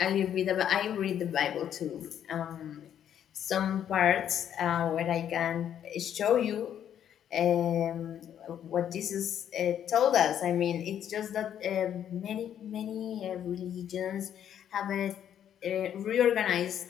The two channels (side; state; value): right; quieter; 9.7 dB